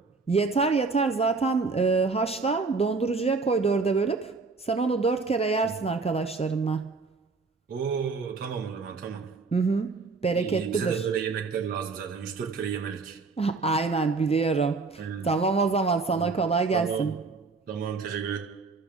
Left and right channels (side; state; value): left; quieter; 4.2 dB